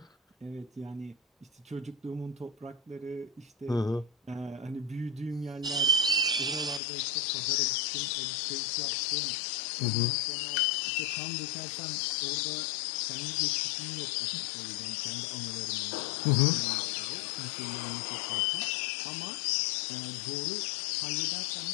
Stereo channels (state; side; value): drops out; right; at 6.8 s